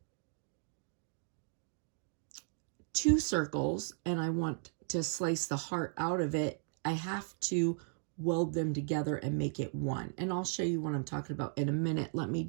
2 circles and I want to slice the heart out of it, I have to weld them together and make it one. And I'll show you what I'm talking about in a minute. Let me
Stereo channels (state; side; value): silent; left; 54 dB below the other